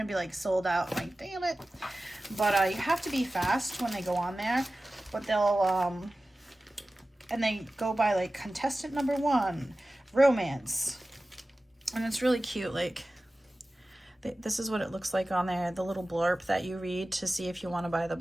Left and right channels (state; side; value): normal; both; correlation 0.96